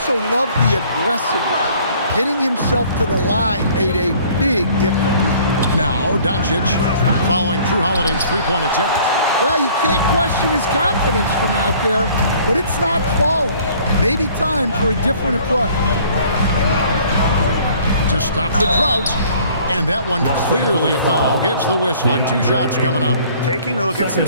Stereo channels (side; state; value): both; inverted; correlation -0.55